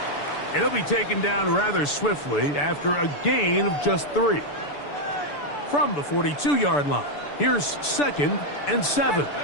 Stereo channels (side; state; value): right; late; 6.9 ms